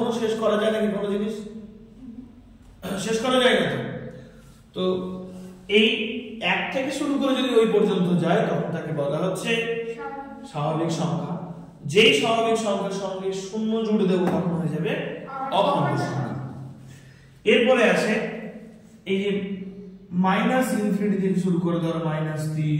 শেষ করা যায় নাকি কোনো জিনিস? শেষ করা যায় না। তো এই 1 থেকে শুরু করে যদি ওই পর্যন্ত যায় তখন তাকে বলা হচ্ছে স্বাভাবিক সংখ্যা। যেই স্বাভাবিক সংখ্যার সঙ্গে 0 জুড়ে দেবো তখন হয়ে যাবে অখণ্ড সংখ্যা। এরপরে আসে এই যে মাইনাস ইনফিনিটি থেকে শুরু করে, ধরো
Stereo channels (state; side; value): identical; both; correlation 1.00